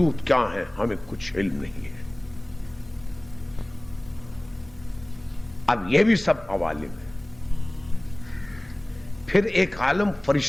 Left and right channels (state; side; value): noise; left; hum, 24 dB below the sound